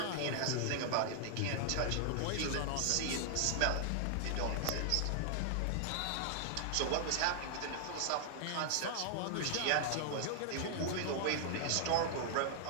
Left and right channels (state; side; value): different; both; correlation -0.01